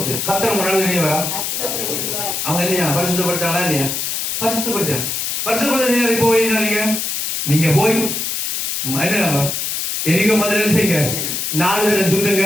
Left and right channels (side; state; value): left; noise; hiss, 2 dB below the sound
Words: கத்தர் முன்னாடி வெளியே வரா. அவங்க என்ன பரிசுத்தப்படுத்தாங்களா இல்லையா? பரிசுத்தப்படுத்த போய் நீங்க போய் என்ன எரிகோ மதுரை செய்யுங்க, 4 தடவை சுத்துங்க,